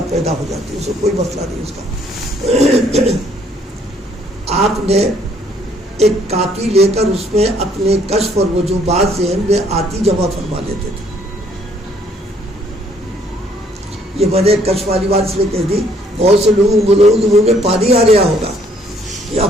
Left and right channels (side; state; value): both; normal; correlation 0.64